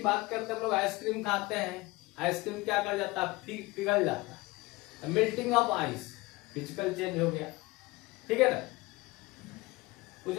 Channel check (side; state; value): right; quieter; 22.0 dB